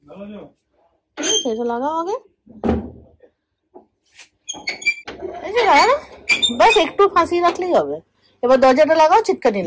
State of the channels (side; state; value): both; identical; correlation 1.00